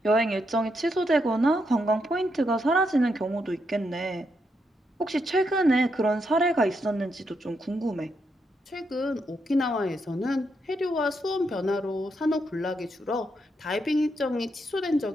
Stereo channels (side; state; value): both; normal; correlation 0.80